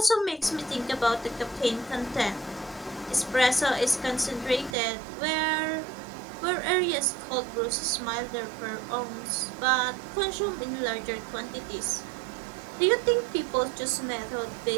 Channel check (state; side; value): drops out; left; at 4.8 s